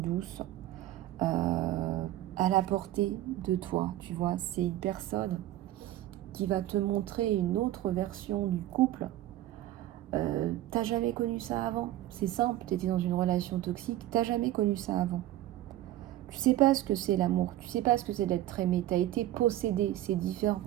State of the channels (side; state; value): left; quieter; 14.3 dB